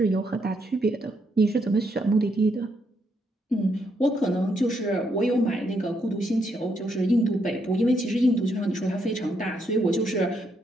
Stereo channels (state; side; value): normal; both; correlation 0.76